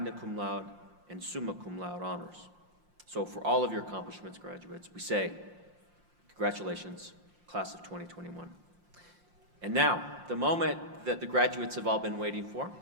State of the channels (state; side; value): late; left; 5.7 ms